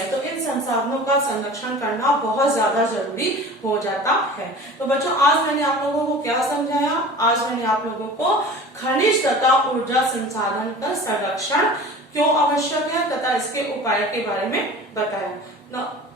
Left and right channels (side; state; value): both; normal; correlation 0.39